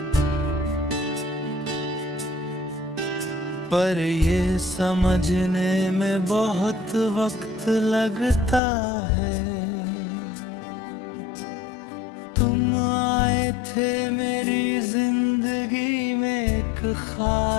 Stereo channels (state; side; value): drops out; right; at 8.6 s